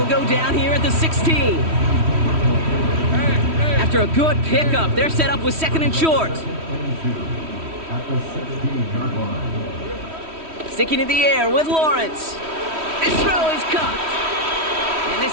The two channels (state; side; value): late; left; 3.1 ms